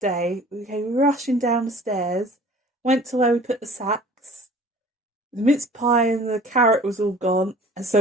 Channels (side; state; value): both; normal; correlation 0.48